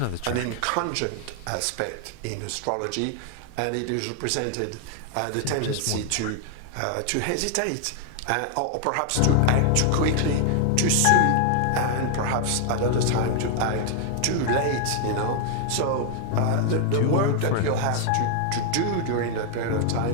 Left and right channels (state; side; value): different; both; correlation 0.00